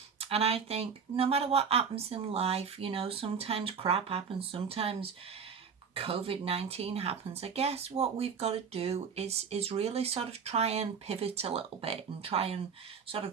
And I think no matter what happens in life, sometimes crap happens, sometimes COVID-19 happens. I guess what we've got to do is really sort of try and pivot a little bit and try and sort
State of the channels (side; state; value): left; quieter; 6.3 dB